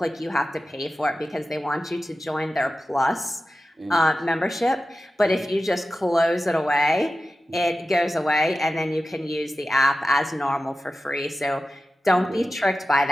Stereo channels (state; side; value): normal; both; correlation 0.94